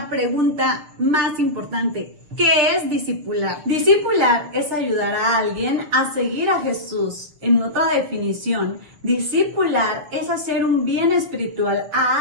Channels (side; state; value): left; late; 6.7 ms